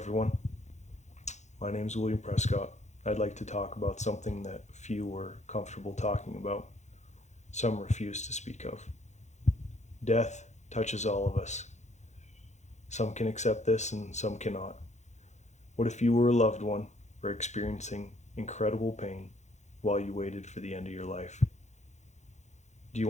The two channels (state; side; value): late; right; 0.33 ms